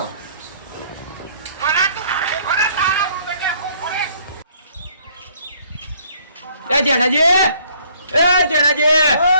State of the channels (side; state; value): both; inverted; correlation -0.61